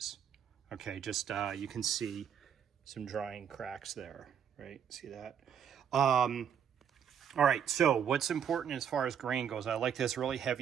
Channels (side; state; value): left; quieter; 8.2 dB